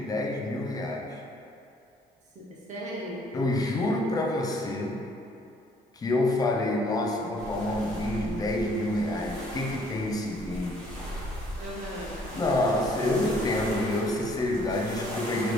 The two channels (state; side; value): normal; both; correlation 0.62